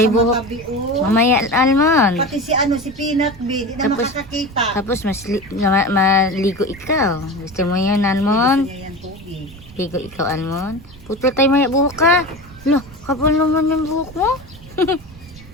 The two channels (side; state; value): right; noise; rumble, 20 dB below the sound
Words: ang buhok. matabi, oh. Mamaya, almond. Pati si ano si Peanut B, di na Tapos- makakakita. Tapos maligo ikaw. Gusto mo yun, almond? Kaya yan tubig. Ligo ikaw, almond. Putol tayo maya buhok ka. Lo, kapal naman yung buhok mo.